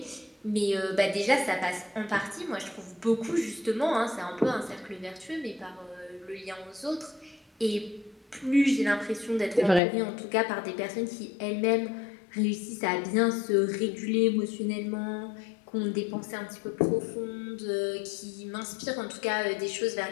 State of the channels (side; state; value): right; drops out; at 9.8 s